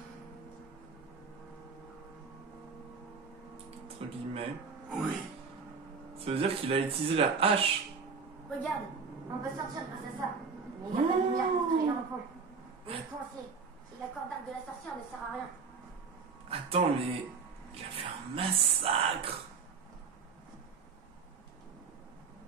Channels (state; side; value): quieter; left; 5.2 dB